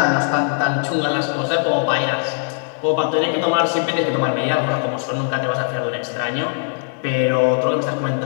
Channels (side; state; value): right; silent; digital silence